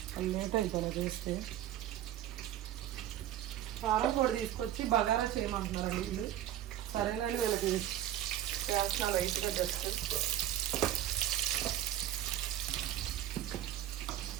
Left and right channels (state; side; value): quieter; left; 12.1 dB